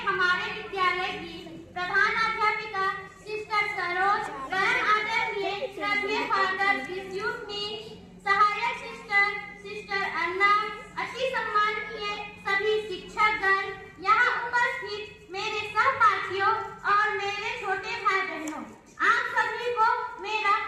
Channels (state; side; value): identical; both; correlation 1.00